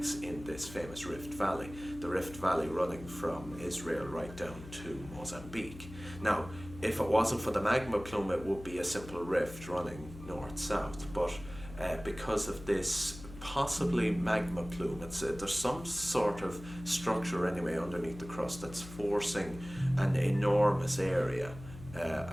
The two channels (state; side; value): noise; left; hum, 14 dB below the sound